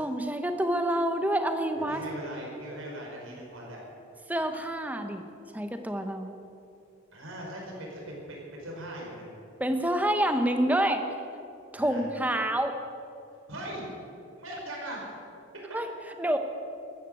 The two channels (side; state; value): both; normal; correlation 0.70